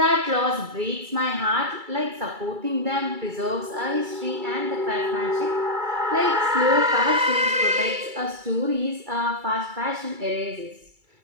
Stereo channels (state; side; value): late; left; 2.3 ms